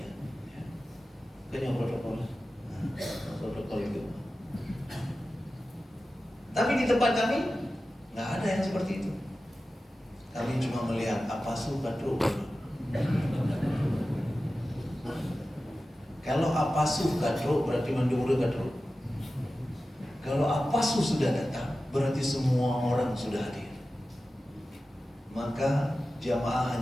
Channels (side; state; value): both; normal; correlation 0.94